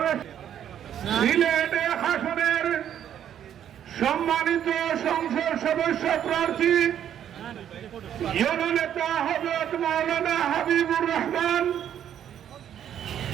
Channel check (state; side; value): quieter; left; 9.9 dB